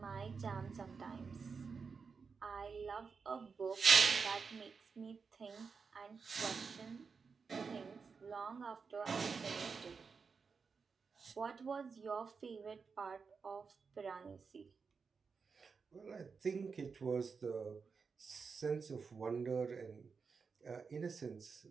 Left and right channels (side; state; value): left; quieter; 5.3 dB